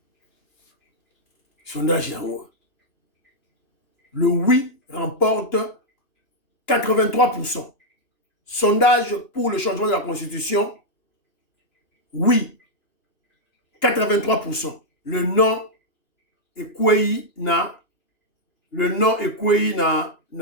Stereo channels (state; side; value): late; right; 2.9 ms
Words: Sondage Yango. Le oui remporte 83%. Sondage pour le changement de la Constitution. Oui. 83%. Le non est quoi na. Le non est quoi